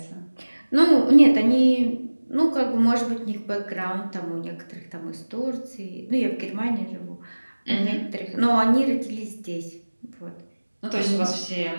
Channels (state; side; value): inverted; both; correlation -1.00